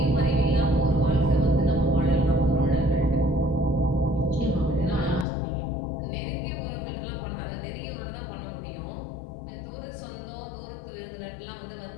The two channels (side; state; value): right; drops out; at 5.2 s